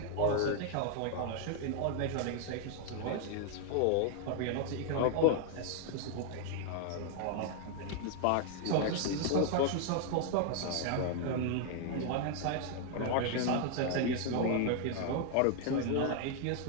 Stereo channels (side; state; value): both; different; correlation 0.00